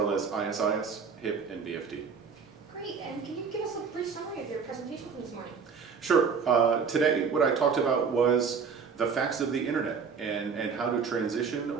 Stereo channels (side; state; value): left; quieter; 5.9 dB